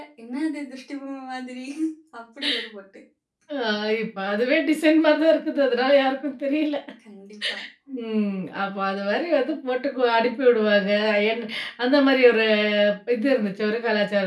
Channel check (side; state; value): both; identical; correlation 1.00